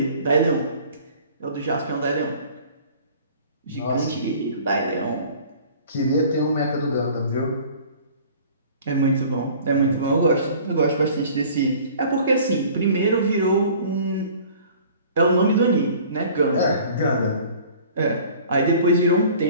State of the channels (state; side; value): inverted; both; correlation -0.48